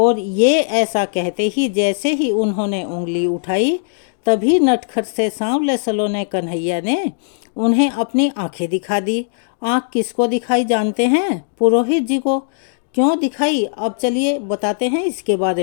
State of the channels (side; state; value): right; silent; digital silence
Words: ये ऐसा कहते ही जैसे ही उन्होंने उंगली उठाई तभी नटखट से सांवले सलोने कन्हैया ने उन्हें अपनी आंखें दिखा दी। आंख किसको दिखाई जानते हैं? पुरोहित जी को। क्यों दिखाई, अब चलिए बताते हैं इसके